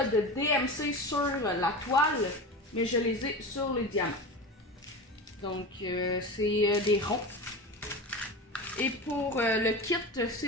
DMC sur la toile, mais je les ai sur les diamants. Donc c'est des ronds. Et pour le kit,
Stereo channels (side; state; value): both; normal; correlation 0.28